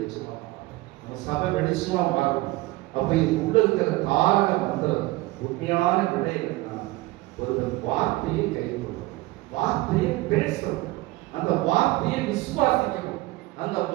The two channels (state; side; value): quieter; left; 20.0 dB